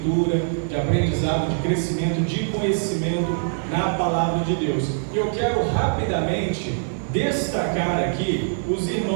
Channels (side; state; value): left; silent; digital silence